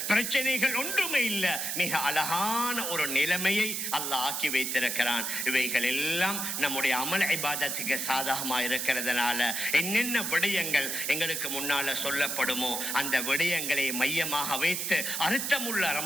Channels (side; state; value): right; noise; hiss, 2 dB below the sound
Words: பிரச்சனைகள் ஒன்றுமே இல்லை, மிக அழகான ஒரு நிலைமையை அல்லாஹ் ஆக்கி வைத்திருக்கிறான். இவைகள் எல்லாம் நம்முடைய அமல் இபாதத்துக்கு சாதகமா இருக்கிறதுனால என்னென்ன விடயங்கள் எங்களுக்கு முன்னால சொல்லப்படுமோ அந்த விடயங்களை மையமாக வைத்து அர்த்தமுள்ள